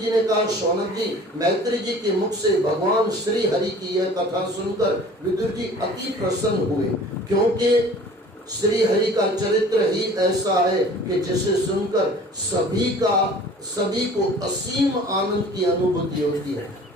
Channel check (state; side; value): normal; both; correlation 0.46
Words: ने कहा, शौनक जी, मैत्री जी के मुख से भगवान श्री हरि की यह कथा सुनकर विदुर जी अति प्रसन्न हुए, क्योंकि श्री हरि का चरित्र ही ऐसा है कि जिसे सुनकर सभी को असीम आनंद की अनुभूति होती है।